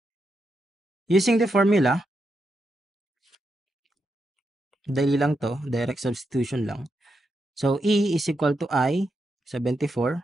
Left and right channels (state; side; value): normal; both; correlation 0.84